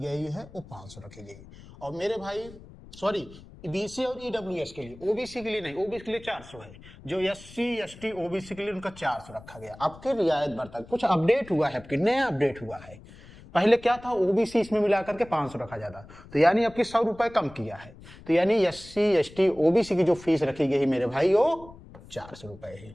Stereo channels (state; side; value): noise; left; rumble, 20 dB below the sound